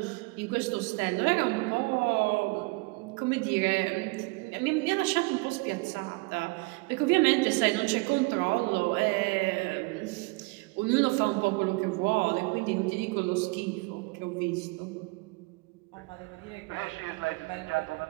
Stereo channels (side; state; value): left; quieter; 26.8 dB